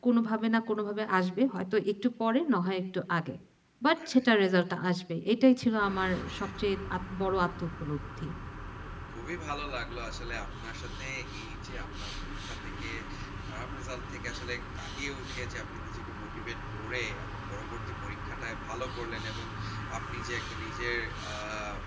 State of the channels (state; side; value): identical; both; correlation 1.00